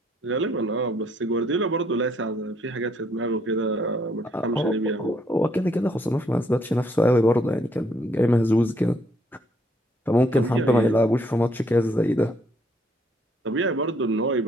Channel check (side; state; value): both; normal; correlation 0.69